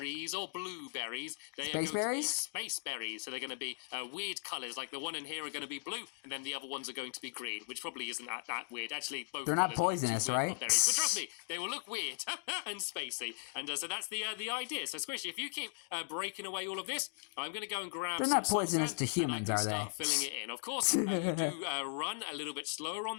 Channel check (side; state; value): right; silent; digital silence